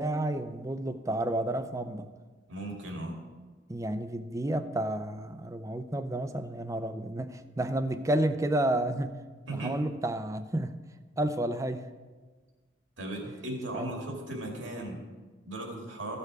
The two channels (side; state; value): both; normal; correlation 0.67